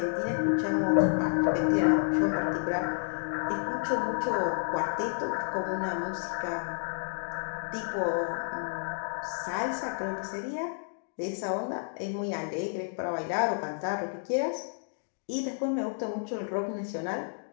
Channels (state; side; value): silent; right; digital silence